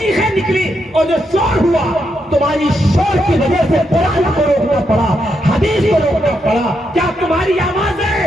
निकली और जो शोर हुआ, तुम्हारी शोर की वजह से कुरान को रोकना पड़ा, हदीस को रोकना पड़ा। क्या तुम्हारी आवाजें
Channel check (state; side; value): normal; both; correlation 0.81